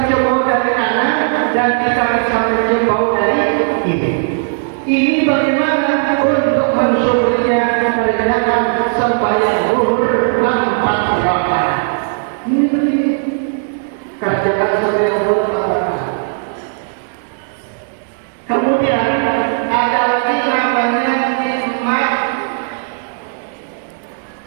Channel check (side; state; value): left; silent; digital silence